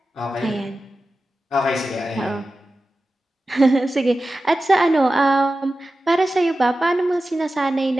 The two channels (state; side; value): normal; both; correlation 0.94